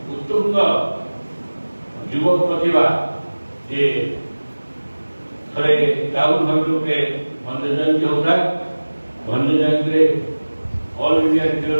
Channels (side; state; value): both; inverted; correlation -1.00